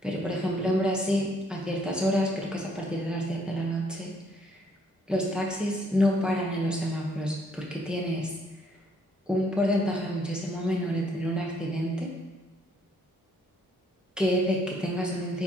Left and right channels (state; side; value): normal; both; correlation 0.67